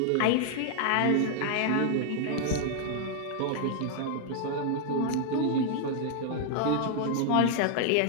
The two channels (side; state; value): both; different; correlation 0.00